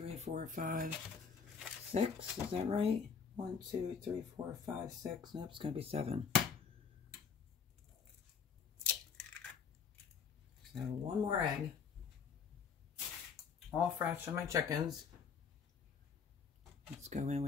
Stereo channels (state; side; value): quieter; right; 6.2 dB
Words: 4, 5, 6. Is that right? 1, 2, 3, 4, 5, 6. Nope, it's going to be 7. So 1 more egg. All fresh on my chickens. Let's go in